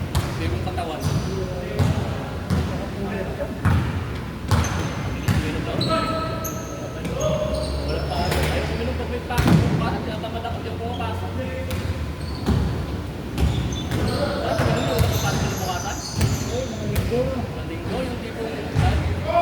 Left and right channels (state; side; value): identical; both; correlation 1.00